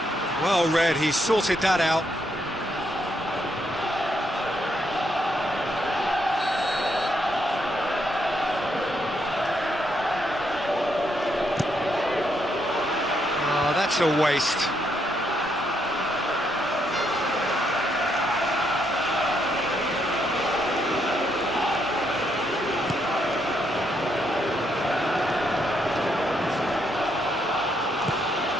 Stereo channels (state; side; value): normal; both; correlation 0.76